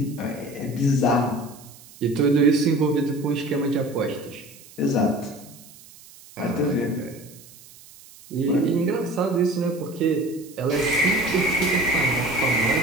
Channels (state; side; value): noise; right; hiss, 22 dB below the sound